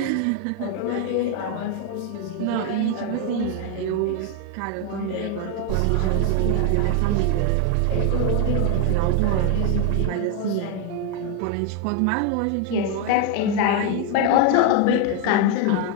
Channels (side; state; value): both; different; correlation 0.01